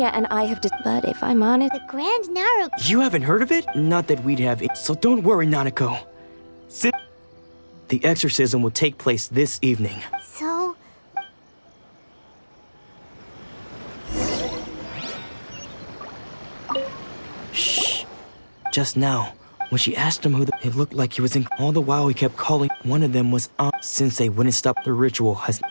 and I have but if I'm honest... The Grand Naru... You haven't heard of it? Not that we'd have it. So don't worry, Nanako. The exorcism will take place this evening. So... Shh. Just now, when she asked him it looked like he was in... All the while he kept calling. One of them was Sensei wouldn't stop the ritual.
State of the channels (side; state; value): both; inverted; correlation -1.00